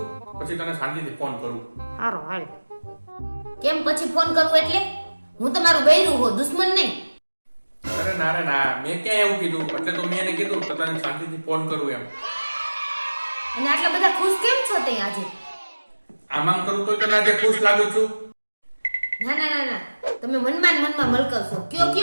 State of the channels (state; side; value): inverted; both; correlation -1.00